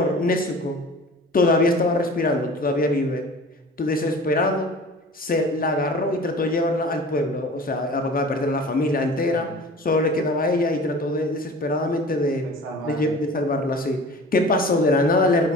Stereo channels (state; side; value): normal; both; correlation 0.41